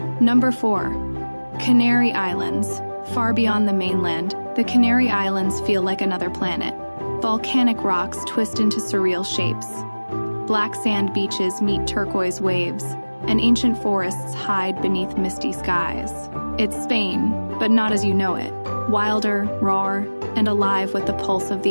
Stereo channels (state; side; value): inverted; both; correlation -1.00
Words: Number 4, Canary Islands. Far beyond the mainland, the Canary Islands feel like another planet. Volcanic rocks twist into surreal shapes. Black sand beaches meet turquoise waves, and ancient forests hide beneath misty skies. It's Spain, but not as you know it. Wilder, raw, and alive with the pulse of